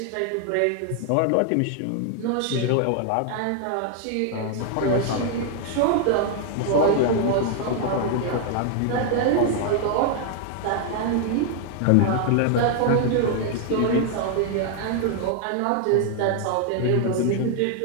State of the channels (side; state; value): both; different; correlation 0.00